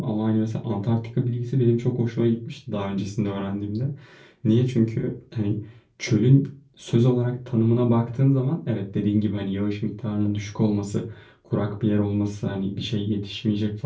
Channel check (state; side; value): identical; both; correlation 1.00